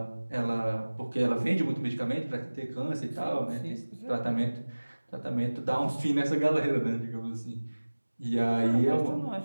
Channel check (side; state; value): both; inverted; correlation -1.00